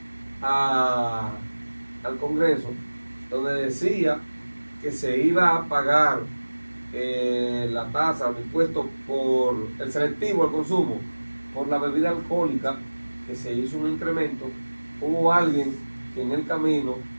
al Congreso, donde decía que se iba a pagar la tasa, el impuesto por el selectivo al consumo, por la bebida alcohólica, que se hizo un incremento, hubo alguien que en el camino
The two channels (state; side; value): inverted; both; correlation -1.00